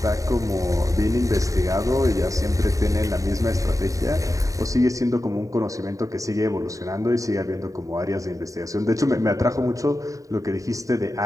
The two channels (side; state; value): left; late; 0.16 ms